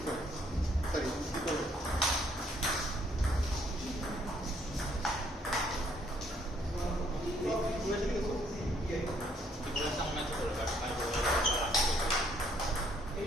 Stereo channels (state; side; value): normal; both; correlation 0.67